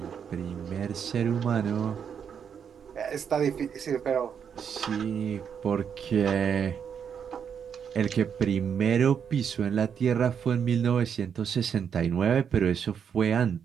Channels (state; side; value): quieter; left; 7.5 dB